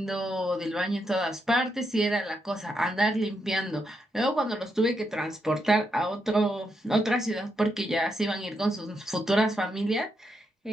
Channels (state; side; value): normal; both; correlation 0.81